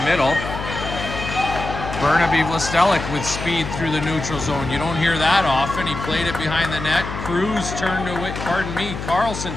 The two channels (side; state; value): left; noise; hum, 7 dB below the sound